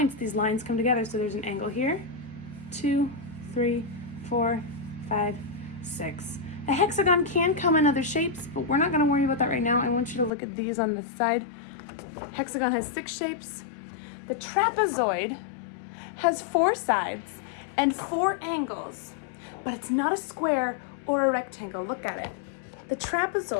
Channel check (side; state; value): right; drops out; at 10.3 s